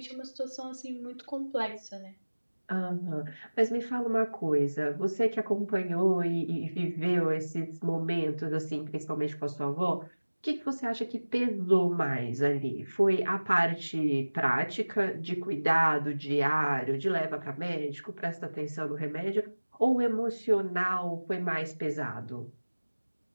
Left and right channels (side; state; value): both; inverted; correlation -1.00